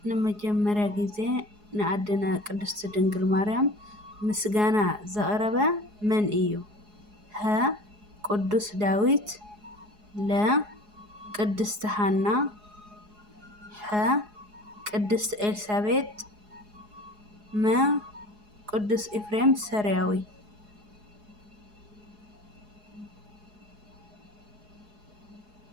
ንመጀመርያ ግዜ ንኣዴና ቅድስት ድንግል ማርያም ምስጋና ዘቕረበ መን እዩ? ሀ ቅዱስ ዳዊት፣ ለ ቅድስቲ ሃና፣ ሐ ቅድስት ኤልሳቤጥ፣ መ ቅዱስ ኤፍሬም ሰሪያዊ።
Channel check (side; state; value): left; late; 4.8 ms